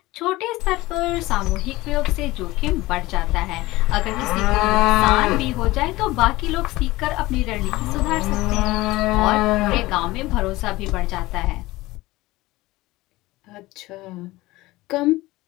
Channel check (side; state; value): right; quieter; 19.2 dB